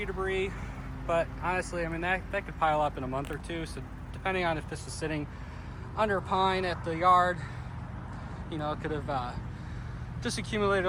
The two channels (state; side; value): identical; both; correlation 1.00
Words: debris, but honestly, I mean, that could pile up in a month or two. So depending on if this was sitting under a pine at the yard, you know, it could have just accumulated